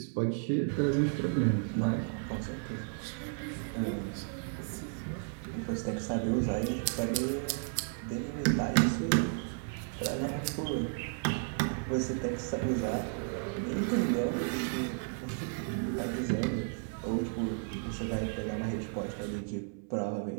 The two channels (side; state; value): left; silent; 56 dB below the other